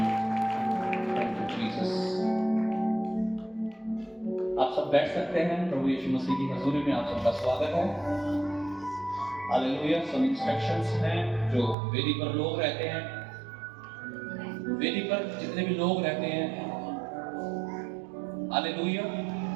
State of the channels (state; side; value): drops out; left; at 11.8 s